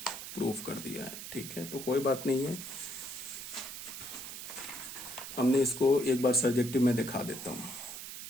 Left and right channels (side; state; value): right; noise; hiss, 9 dB below the sound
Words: प्रूफ कर दिया है, ठीक है, तो कोई बात नहीं है, हमने इसको एक बार सर्जेक्टिव में दिखा देता हूं।